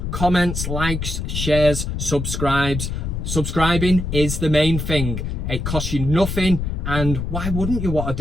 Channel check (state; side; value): noise; left; rumble, 3 dB below the sound